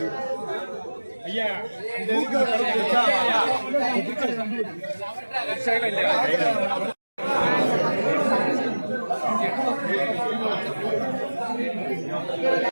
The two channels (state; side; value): inverted; both; correlation -1.00